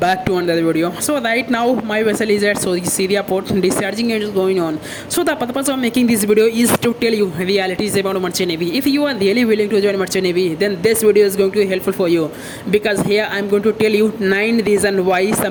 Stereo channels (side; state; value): both; identical; correlation 1.00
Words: to another video. So right now my vessel is at Syria port, discharging is going on. So the purpose of making this video is to tell you realities about Merchant Navy. If you are really willing to join Merchant Navy, then this video is going to be helpful for you, because here I am going to tell you 9 reasons why